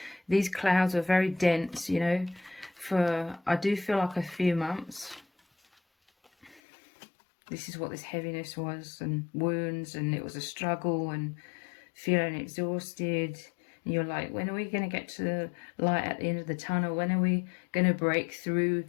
these clouds are very dense, you know, for, I do feel like, a few months. This is what this heaviness was, and wounds, and it was a struggle, and feeling exhausted. And you're like, when are we going to get to the light at the end of the tunnel? When are we going to break through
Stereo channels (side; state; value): right; drops out; at 6.6 s